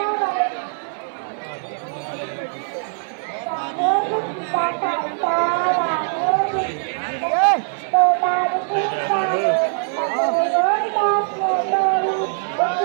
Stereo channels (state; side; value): silent; left; 65 dB below the other